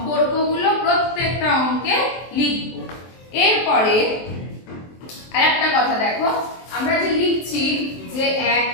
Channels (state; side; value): late; right; 23 ms